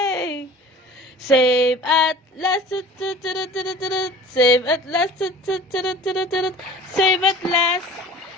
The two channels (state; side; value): normal; both; correlation 0.44